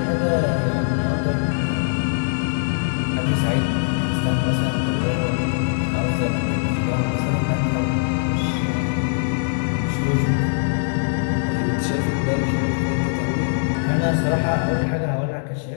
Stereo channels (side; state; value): right; silent; 65 dB below the other